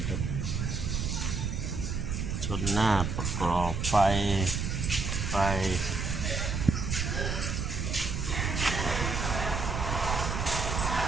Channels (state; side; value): noise; right; rumble, 1 dB below the sound